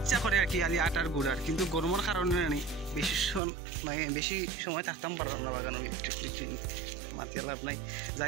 করে আর কি, আলি আটার গুড়ার, কিন্তু গরমের কারণে আনি বেশি সময় থাকতাম পারলাম না বাগানো, মাথা লাভ নাই।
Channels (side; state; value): left; drops out; at 3.4 s